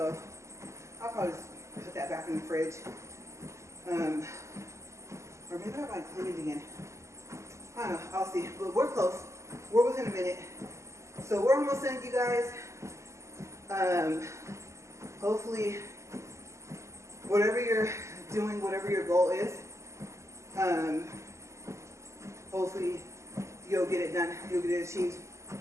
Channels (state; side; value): late; left; 0.14 ms